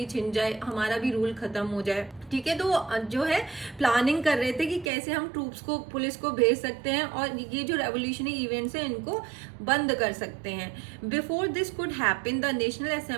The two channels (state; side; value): drops out; left; at 4.9 s